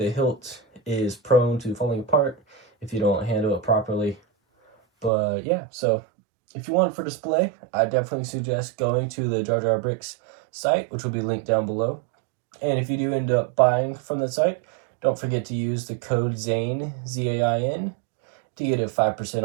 hilt is prone to falling apart if you don't handle it properly. But yeah, so if you want it for display, I definitely suggest going to the JarJar Bricks site, which will be linked down below. And if you do end up buying from the site, don't forget to use the code ZAIN, Z-A-I-N, to get it 5%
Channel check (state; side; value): drops out; left; at 5.1 s